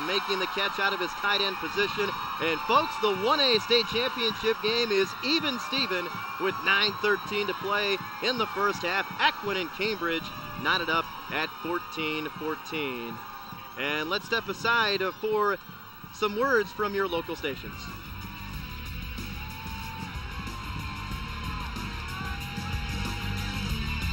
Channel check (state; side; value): identical; both; correlation 1.00